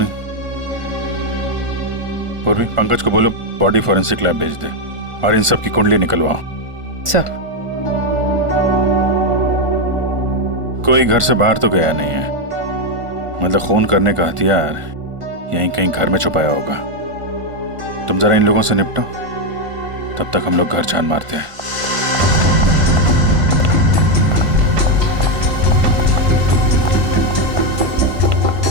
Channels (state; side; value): late; left; 1.4 ms